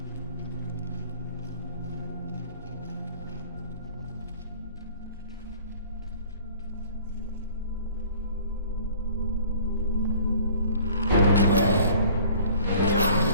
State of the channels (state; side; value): inverted; both; correlation -0.51